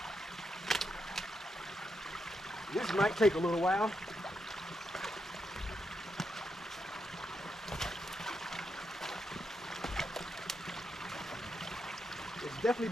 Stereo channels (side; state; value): both; normal; correlation 0.82